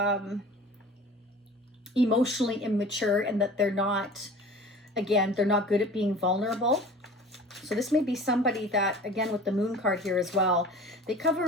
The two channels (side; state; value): both; normal; correlation 0.42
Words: emotionally immature and that they're not good at being vulnerable. So this may be somebody that, again, with the moon card here as well, they